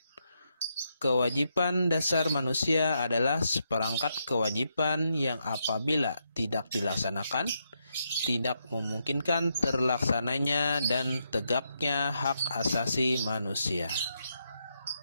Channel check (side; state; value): both; inverted; correlation -0.81